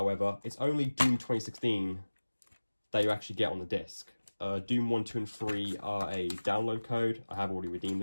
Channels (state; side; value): inverted; both; correlation -1.00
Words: it's only Doom 2016 that you actually get on the disc. Doom 1, 2, and 3 are a download code. I have already redeemed